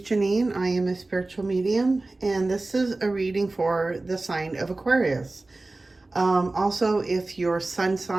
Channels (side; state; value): left; quieter; 3.1 dB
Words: Janine. I am a spiritual medium, and this is a reading for the sign of Aquarius. Also, if your sun